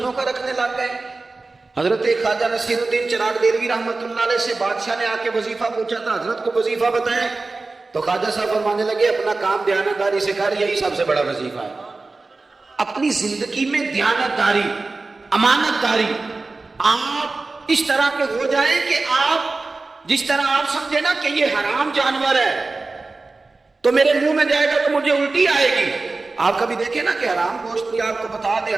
کا رکھنے لگ گئے۔ حضرت خواجہ نصیر الدین چراغ دہلوی رحمۃ اللہ علیہ سے بادشاہ نے آ کے وظیفہ پوچھا تھا، حضرت کو وظیفہ بتائیں، تو خواجہ صاحب فرمانے لگے اپنا کام دیانتداری سے کر، یہی سب سے بڑا وظیفہ ہے۔ اپنی زندگی میں دیانتداری، امانت داری، آپ اس طرح کے ہو جائیں کہ آپ جس طرح آپ سمجھے نا کہ یہ حرام جانور ہے تو میرے منہ میں جائے گا تو مجھے الٹی آئے گی۔ آپ کبھی دیکھیں نا کہ حرام گوشت بھی آپ کو بتا دے،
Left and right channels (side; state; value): left; quieter; 3.6 dB